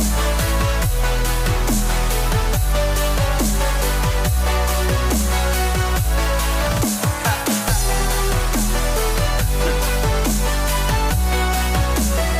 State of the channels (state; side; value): identical; both; correlation 1.00